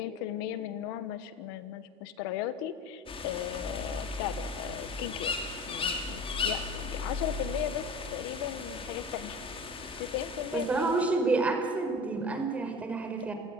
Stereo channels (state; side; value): normal; both; correlation 0.36